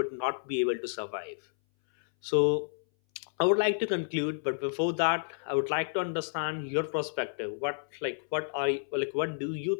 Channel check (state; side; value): silent; right; 57 dB below the other